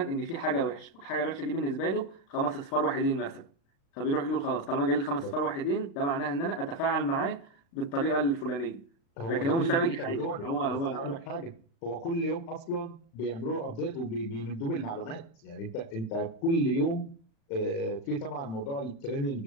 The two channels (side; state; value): right; late; 36 ms